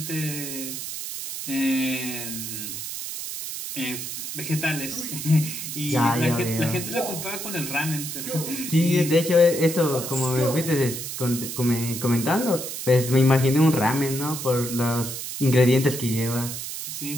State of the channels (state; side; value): noise; right; hiss, 6 dB below the sound